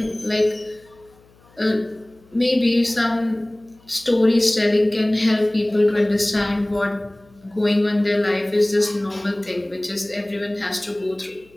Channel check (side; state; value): left; noise; hum, 30 dB below the sound